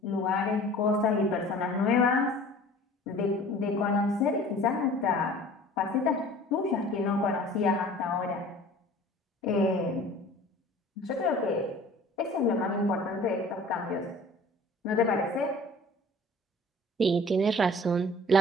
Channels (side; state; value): both; normal; correlation 0.46